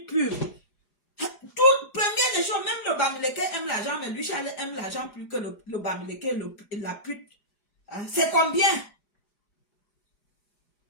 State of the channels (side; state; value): right; late; 4.9 ms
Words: pub. Première des choses, même le Bamileke aime l'argent, mais lui, Charles aime l'argent plus que le Bamileke et la pute. Hein? C'est combien?